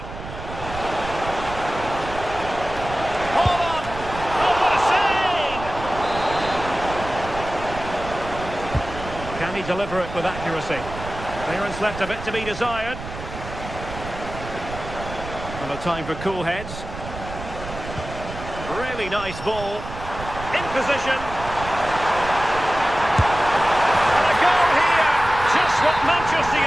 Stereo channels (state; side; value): noise; right; rumble, 11 dB below the sound